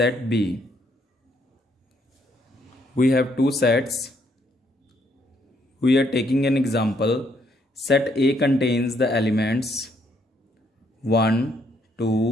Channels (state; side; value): normal; both; correlation 0.71